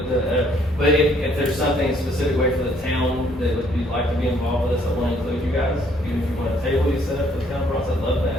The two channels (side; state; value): both; normal; correlation 0.65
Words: if there's something specific way for the town that you'd like to be involved with us, I want to include you guys. Even if you want a table you set up for the town process, I'd love